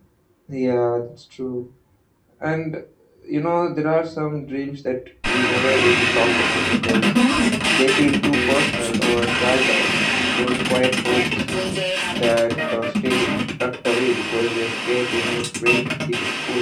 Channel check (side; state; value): both; identical; correlation 1.00